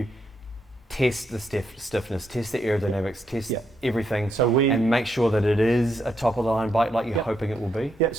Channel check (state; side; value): normal; both; correlation 0.79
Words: test the stiffness, test the aerodynamics, test everything, and make sure that it is a top of the line bike like you're hoping it will be? Yeah.